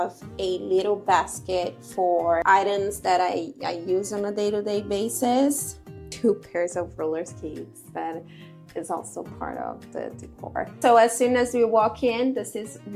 a little basket for items that I use on a day-to-day basis. 2 pairs of roller skates that is also part of the decor. So as soon as we walk in, this is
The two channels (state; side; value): identical; both; correlation 1.00